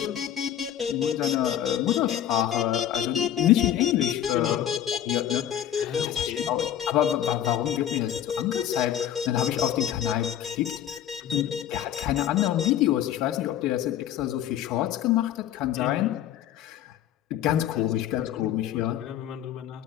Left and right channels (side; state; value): right; quieter; 10.8 dB